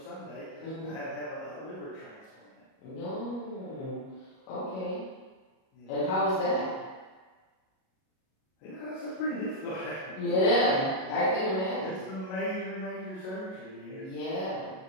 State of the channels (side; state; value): right; late; 38 ms